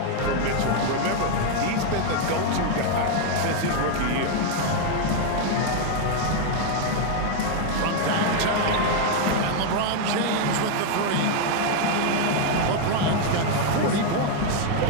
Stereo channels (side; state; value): both; different; correlation 0.01